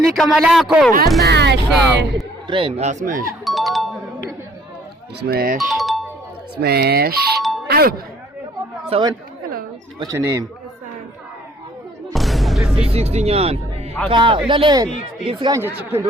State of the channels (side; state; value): both; normal; correlation 0.59